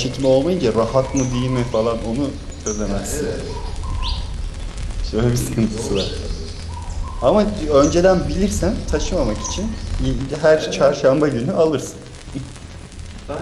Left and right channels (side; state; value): both; identical; correlation 1.00